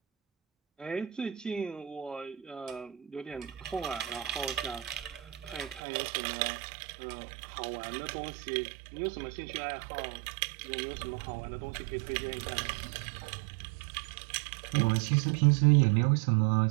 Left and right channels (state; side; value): drops out; left; at 5.8 s